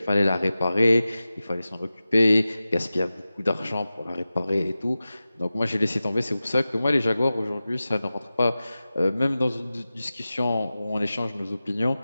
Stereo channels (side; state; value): both; inverted; correlation -0.95